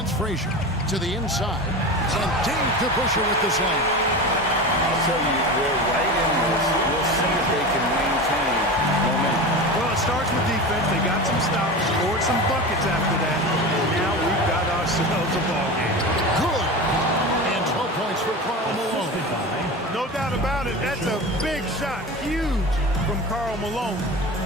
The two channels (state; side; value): normal; both; correlation 0.28